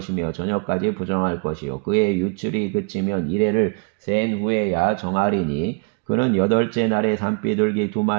저녁까지 부정할 것이요 그의 유출이 그치면 이레를 센 후에야 정하리니 그는 여덟째 날에 산비둘기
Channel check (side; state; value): left; quieter; 36.0 dB